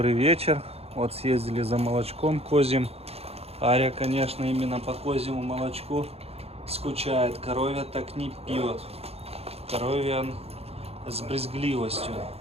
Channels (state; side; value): late; left; 0.29 ms